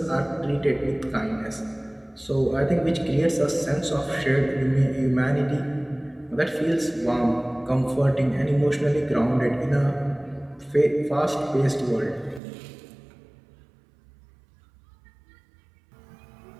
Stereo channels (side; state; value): left; drops out; at 12.4 s